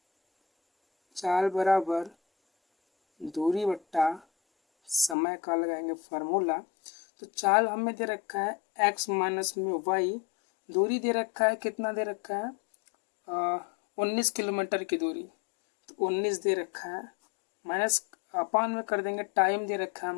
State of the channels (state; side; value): drops out; right; at 5.2 s